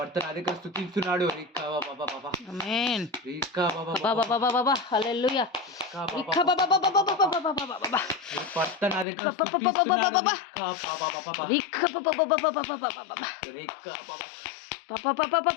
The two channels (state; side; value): drops out; right; at 9.1 s